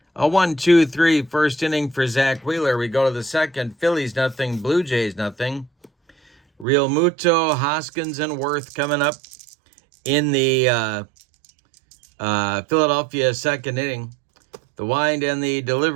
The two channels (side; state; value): left; drops out; at 6.7 s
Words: A 1-2-3 first inning for Zach Wheeler. We go to the second. Phillies nothing, Blue Jays nothing. Real Muto, Hoskins, and Worth coming up in the Philadelphia second inning. The wind and the